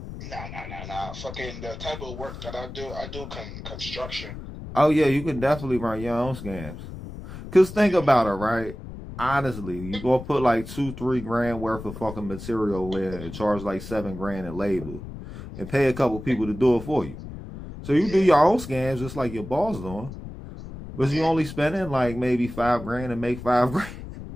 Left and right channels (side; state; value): left; noise; rumble, 11 dB below the sound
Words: Nah. Fucking the type of work that I do construction. Oh, yeah, you can definitely run your own scams. Because think about it, right? Honestly, you go put like $2-3 grand worth of fucking material in and charge like $7 grand in labor and pay a couple people to do it for you. So you do your own scams just like your boss doing. But you only spending like maybe $5 grand and make $5 grand.